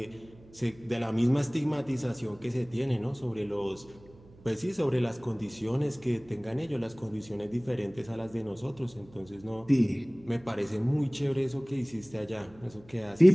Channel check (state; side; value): noise; right; hum, 24 dB below the sound